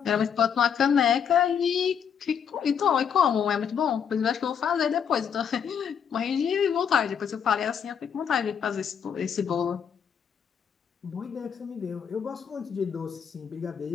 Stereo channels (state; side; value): quieter; right; 7.6 dB